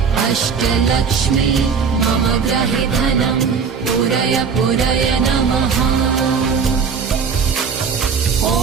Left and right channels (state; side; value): quieter; left; 5.9 dB